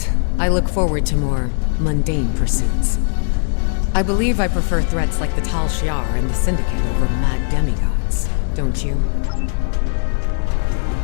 I look forward to more mundane pursuits. I believe I prefer threats like the Tal Shiar and the Syndicate over mad demigods, don't you?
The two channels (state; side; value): silent; right; digital silence